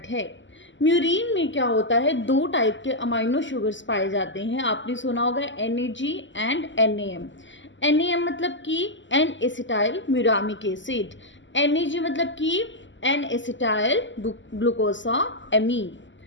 है। म्यूरिन में क्या होता है, दो टाइप के अमाइनो शुगर्स पाए जाते हैं। आपने सुना होगा NAG एंड NAM। NAM मतलब कि N acetyl muramic acid, NAG मतलब कि एन एसिटाइल ग्लूकोसा एमीन।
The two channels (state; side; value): late; right; 0.54 ms